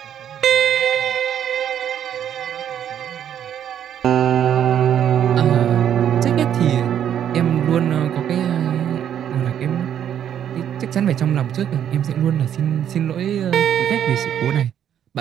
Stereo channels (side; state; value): left; quieter; 9.7 dB